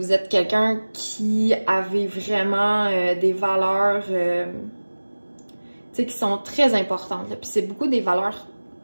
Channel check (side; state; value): both; inverted; correlation -1.00